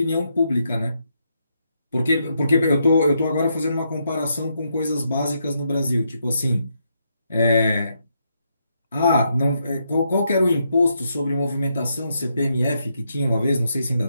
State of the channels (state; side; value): inverted; both; correlation -0.79